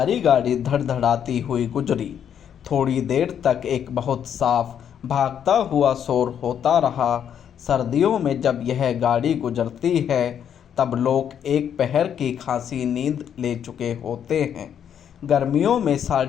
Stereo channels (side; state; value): right; quieter; 8.8 dB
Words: गाड़ी धड़धड़ाती हुई गुजरी। थोड़ी देर तक एक बहुत साफ भागता हुआ शोर होता रहा। सर्दियों में जब यह गाड़ी गुजरती है तब लोग एक पहर की खासी नींद ले चुके होते हैं। गर्मियों में